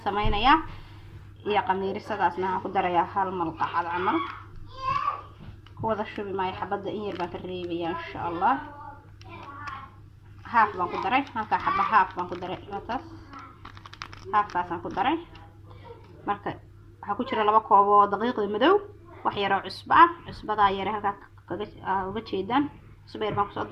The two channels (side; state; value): both; identical; correlation 1.00